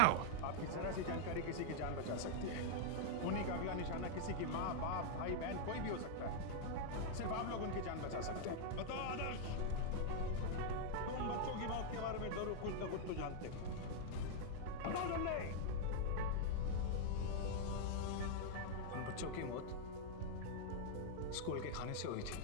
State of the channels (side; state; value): both; different; correlation -0.01